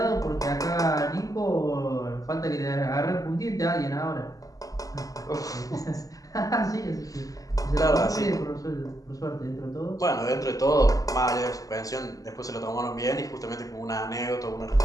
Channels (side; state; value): right; late; 0.17 ms